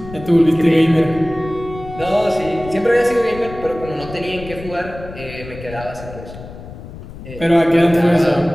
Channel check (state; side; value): noise; left; rumble, 14 dB below the sound